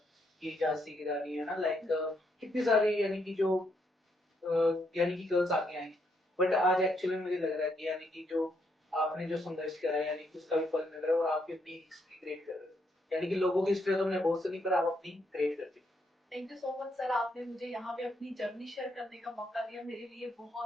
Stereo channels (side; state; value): both; normal; correlation 0.76